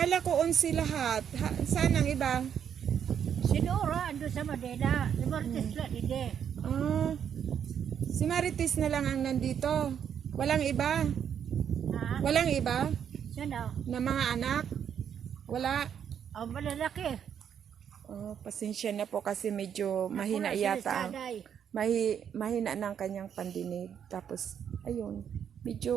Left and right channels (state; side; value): quieter; left; 8.5 dB